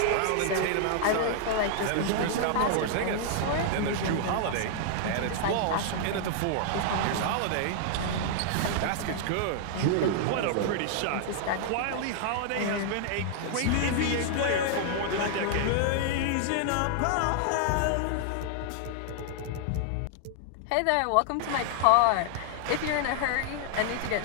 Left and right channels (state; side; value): different; both; correlation -0.01